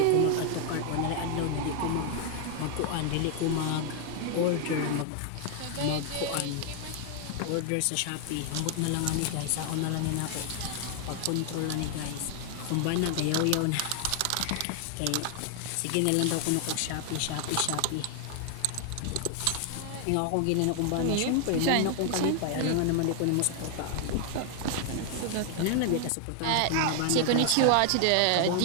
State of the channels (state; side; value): different; both; correlation 0.00